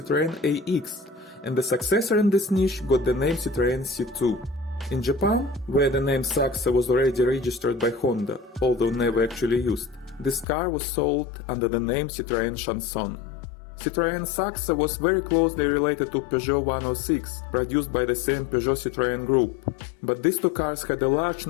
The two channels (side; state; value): right; drops out; at 10.5 s